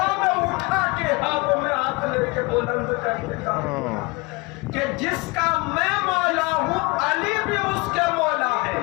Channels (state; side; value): quieter; right; 26.2 dB